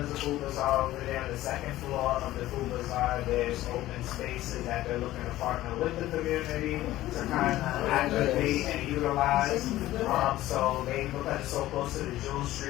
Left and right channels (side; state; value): right; quieter; 15.5 dB